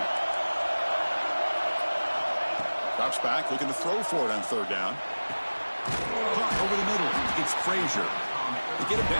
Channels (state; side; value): inverted; both; correlation -1.00